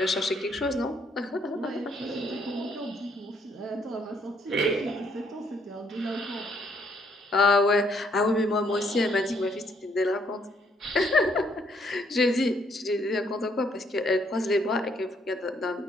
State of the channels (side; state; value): both; normal; correlation 0.69